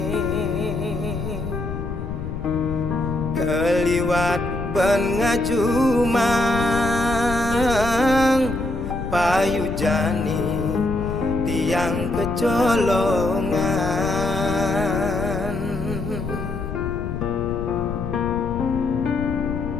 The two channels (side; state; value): left; noise; rumble, 6 dB below the sound